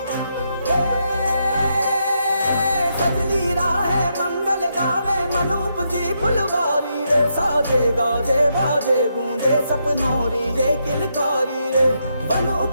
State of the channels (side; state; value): both; inverted; correlation -0.80